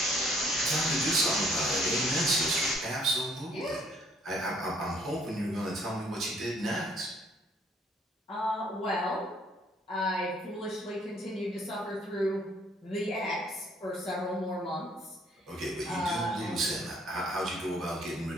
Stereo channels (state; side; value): normal; both; correlation 0.63